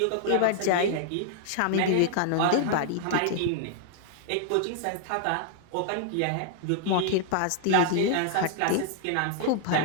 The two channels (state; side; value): different; both; correlation -0.01